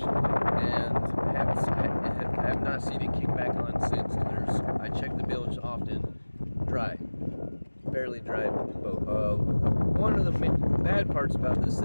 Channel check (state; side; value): inverted; both; correlation -1.00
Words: and I have not seen it kick back on since. And I checked the bilge often, dry, fairly dry boat. One of the bad parts about this